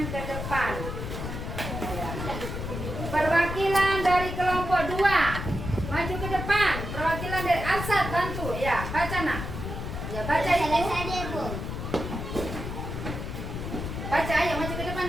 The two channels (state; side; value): noise; left; rumble, 5 dB below the sound